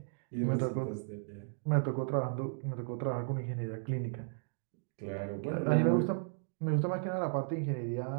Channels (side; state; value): left; silent; digital silence